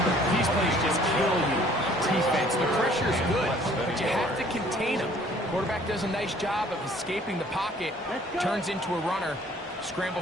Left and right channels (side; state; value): both; normal; correlation 0.56